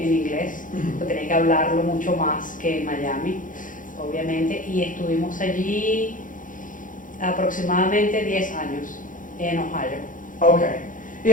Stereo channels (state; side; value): late; right; 0.38 ms